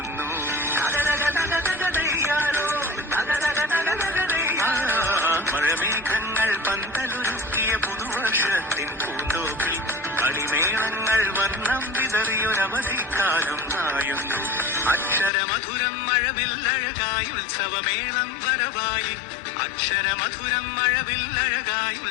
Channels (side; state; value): right; drops out; at 15.3 s